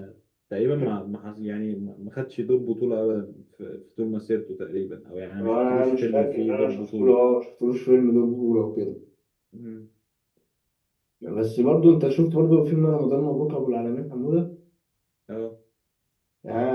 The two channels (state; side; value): identical; both; correlation 1.00